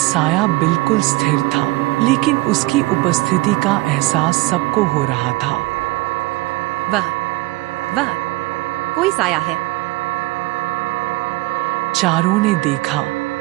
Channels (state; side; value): quieter; left; 21.4 dB